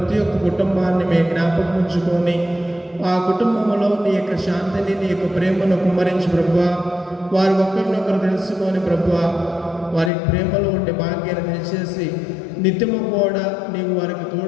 ఒక్క కుటుంబాన్ని మేము జ్ఞాపకం ఉంచుకొని ఆ కుటుంబంలో నీ యొక్క శాంతిని, నీ యొక్క ప్రేమను కుమ్మరించి ప్రభువా, వారు ఒకరినొకరు తెలుసుకొని ప్రభువా, వారి ప్రేమలో ఉండే భాగ్యాన్ని దయచేసి నిత్యము కూడా నీవు వారికి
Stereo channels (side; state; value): right; drops out; at 10.1 s